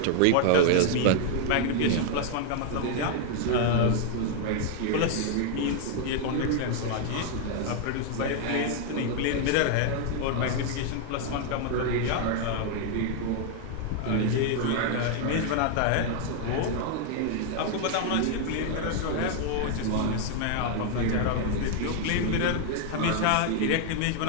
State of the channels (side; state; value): both; different; correlation 0.00